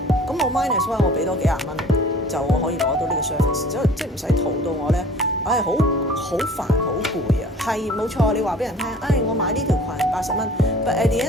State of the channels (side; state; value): both; normal; correlation 0.47